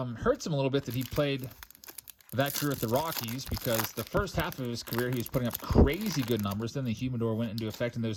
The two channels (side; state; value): both; identical; correlation 1.00